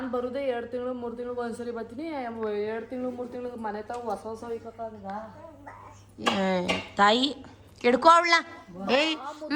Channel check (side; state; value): both; identical; correlation 1.00